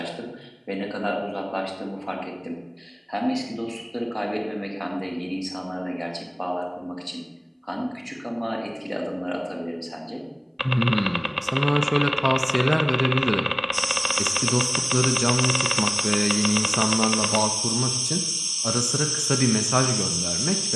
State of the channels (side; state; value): both; identical; correlation 1.00